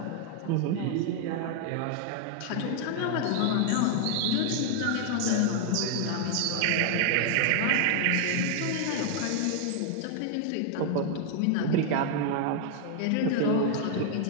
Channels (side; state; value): both; different; correlation 0.00